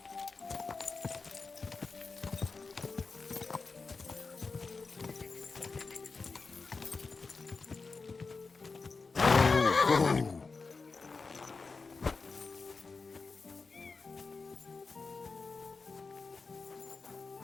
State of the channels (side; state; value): right; quieter; 4.3 dB